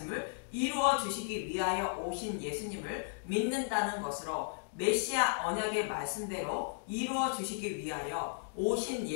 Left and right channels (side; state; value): right; silent; digital silence